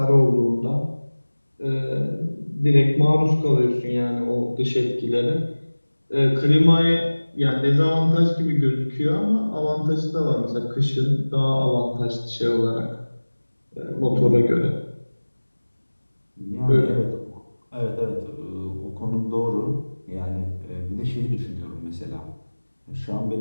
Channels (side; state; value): both; inverted; correlation -1.00